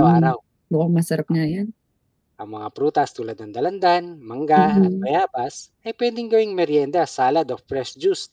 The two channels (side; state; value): both; identical; correlation 1.00